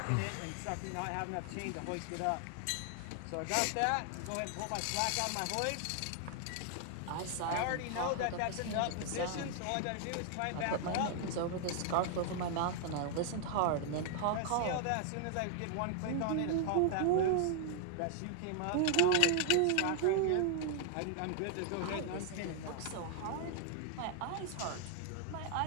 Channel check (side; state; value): both; different; correlation 0.00